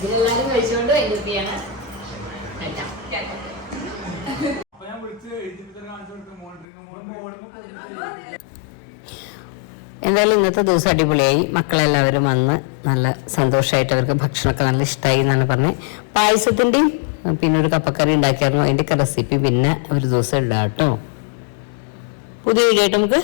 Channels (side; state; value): right; drops out; at 6.7 s